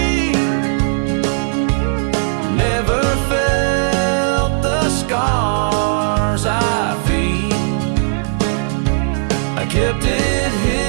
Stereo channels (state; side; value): silent; left; 68 dB below the other